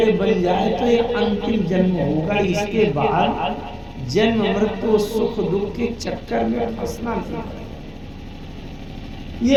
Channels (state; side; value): identical; both; correlation 1.00